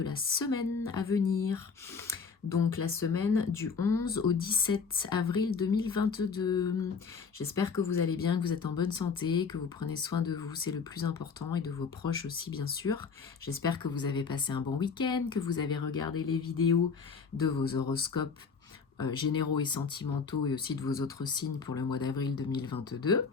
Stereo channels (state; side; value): quieter; right; 5.5 dB